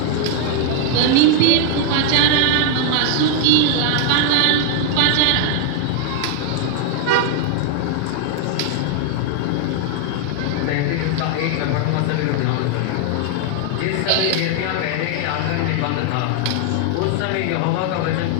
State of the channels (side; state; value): both; different; correlation 0.00